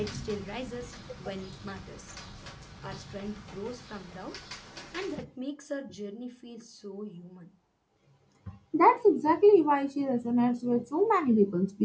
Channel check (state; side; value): identical; both; correlation 1.00